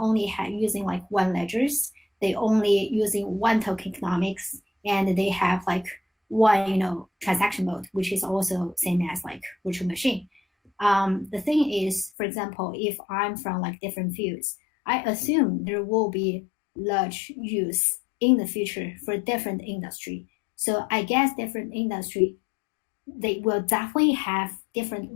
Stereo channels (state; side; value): drops out; right; at 12.1 s